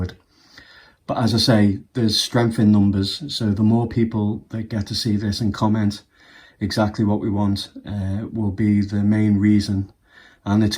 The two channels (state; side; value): identical; both; correlation 1.00